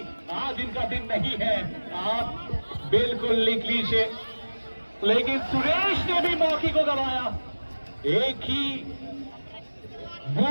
आज इनका दिन नहीं है आप बिल्कुल लिख लीजिए। लेकिन सुरेश ने भी मौके को गंवाया। एक ही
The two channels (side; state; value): both; inverted; correlation -1.00